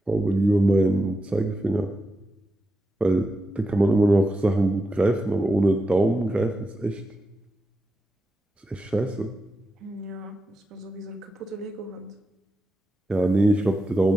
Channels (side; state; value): both; normal; correlation 0.89